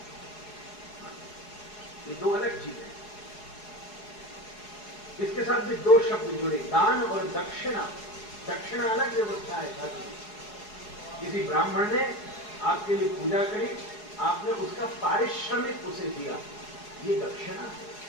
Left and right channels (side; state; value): right; late; 4.8 ms